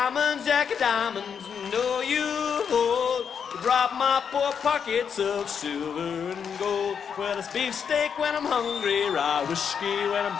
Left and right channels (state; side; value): quieter; right; 7.1 dB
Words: know you hold to drop my poor pockets of silver and gold. Well, it's beefsteak when I'm hungry, rye whiskey when I'm